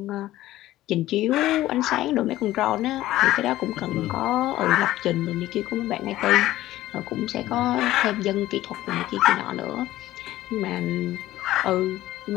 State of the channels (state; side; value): quieter; right; 15.3 dB